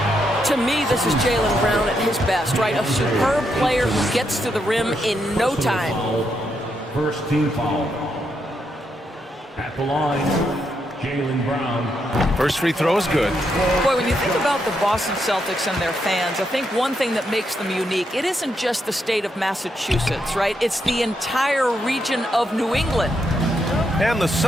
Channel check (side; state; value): both; normal; correlation 0.80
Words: To me, this is Jaylen Brown at his best, right? A superb player who gets to the rim in no time. First team foul. At the line, Jaylen Brown. First free throw is good. Boy, when you think about the Boston Celtics and their fans, I think one thing that makes them unique, it isn't just the state of Massachusetts, right? It's the entire region of New England. And the